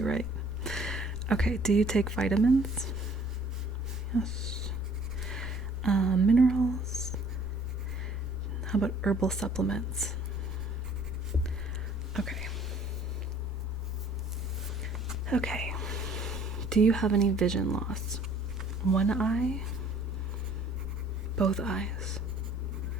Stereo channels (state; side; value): normal; both; correlation 0.56